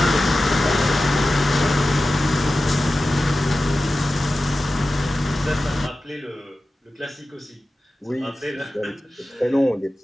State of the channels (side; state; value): both; normal; correlation 0.94